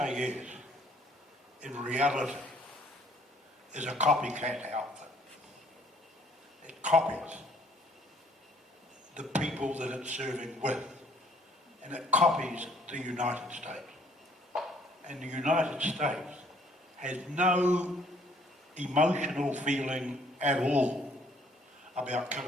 in reality, is a copycat outfit. It copies the people that it's serving with, and it copies the United States. And the United States has no emotional feeling at all about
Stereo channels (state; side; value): normal; both; correlation 0.62